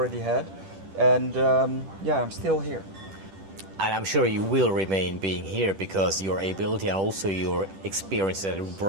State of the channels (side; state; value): left; late; 10 ms